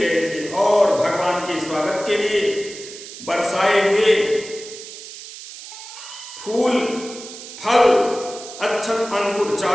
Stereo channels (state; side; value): noise; right; hiss, 14 dB below the sound